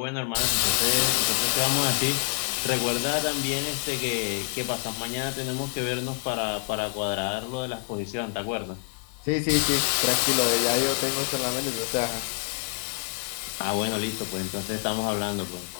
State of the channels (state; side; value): silent; right; 60 dB below the other